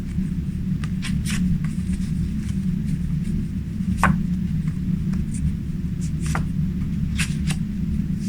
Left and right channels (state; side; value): identical; both; correlation 1.00